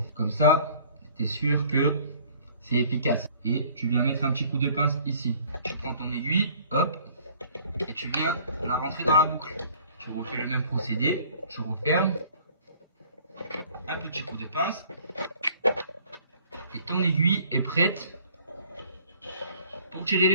Comme ça, tu es sûr que c'est efficace. Et tu viens mettre un petit coup de pince ici. Tu prends ton aiguille, hop, et tu viens la rentrer dans la boucle. Tu refais le même procédé. Tu refermes. Un petit coup de pince. Et ton aiguille est prête pour tirer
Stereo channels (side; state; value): both; inverted; correlation -0.54